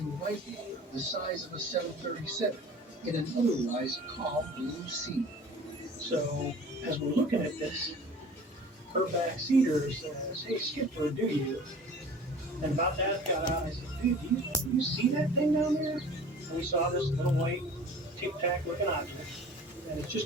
white water the size of a 737 in an otherwise calm blue sea. So, as we're looking at this, her backseater says, "Hey, Skipper, do you?" And about that got out. I said, "Dude, do you see that thing down there?" And we saw this little white tic-tac looking object, and it's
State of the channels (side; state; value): both; normal; correlation 0.44